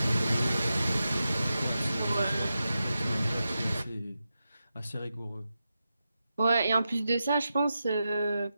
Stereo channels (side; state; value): both; inverted; correlation -0.90